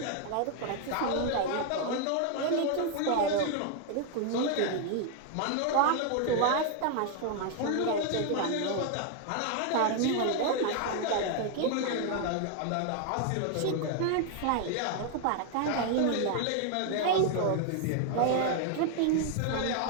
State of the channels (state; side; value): different; both; correlation 0.00